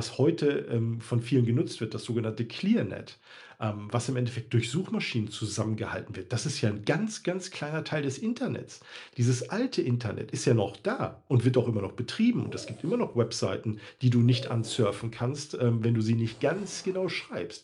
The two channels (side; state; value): both; identical; correlation 1.00